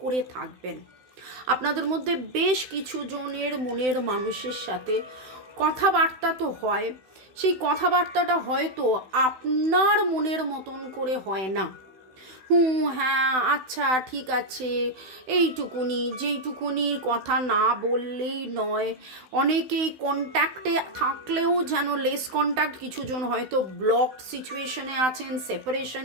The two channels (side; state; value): left; late; 16 ms